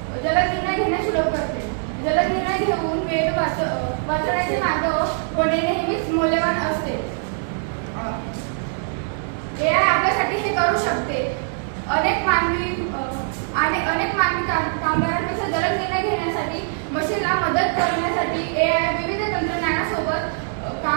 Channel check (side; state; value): left; silent; digital silence